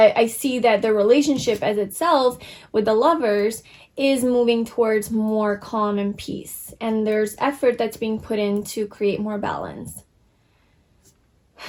I see that the relationship as itself with the Lovers is moving towards more calm and peace, and there's effort that's being put in to create more balance.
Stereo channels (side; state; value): both; identical; correlation 1.00